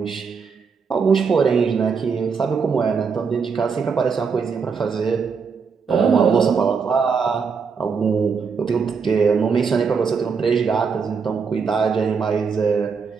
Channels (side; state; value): left; quieter; 5.7 dB